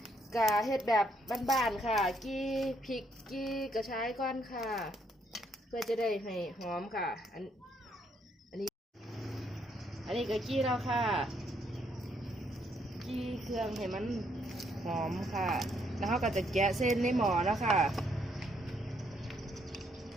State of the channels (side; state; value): both; normal; correlation 0.72